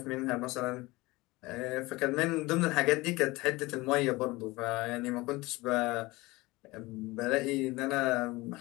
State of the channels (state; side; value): quieter; right; 21.6 dB